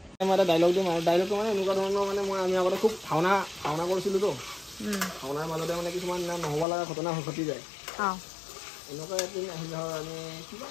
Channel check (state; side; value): drops out; right; at 6.7 s